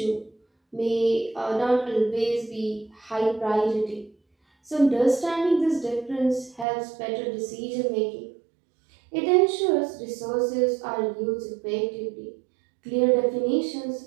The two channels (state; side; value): drops out; left; at 6.7 s